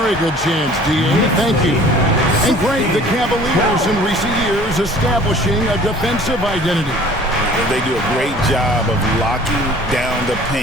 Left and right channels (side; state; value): both; normal; correlation 0.49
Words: good chance, D.A. Thank you. And great, the Cavaliers in recent years establishing a defensive identity. They do a great job of locking down the